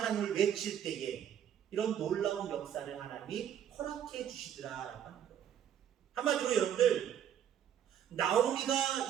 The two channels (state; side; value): quieter; left; 9.7 dB